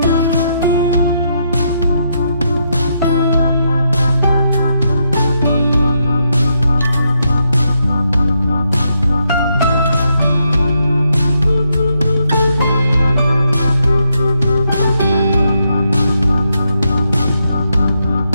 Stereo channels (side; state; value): both; inverted; correlation -0.80